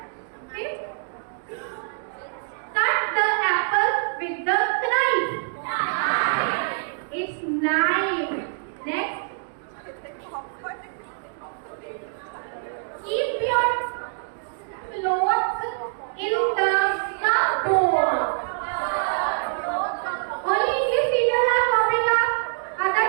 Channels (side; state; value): left; silent; digital silence